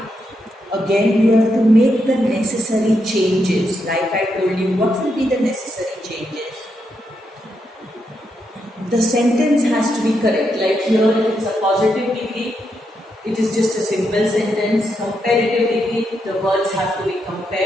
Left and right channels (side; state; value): both; normal; correlation 0.82